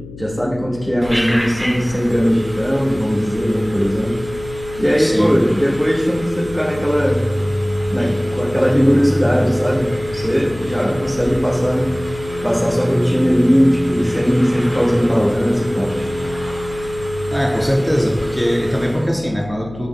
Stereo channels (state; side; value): noise; left; hum, 16 dB below the sound